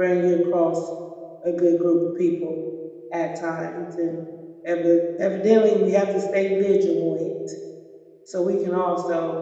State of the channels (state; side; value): identical; both; correlation 1.00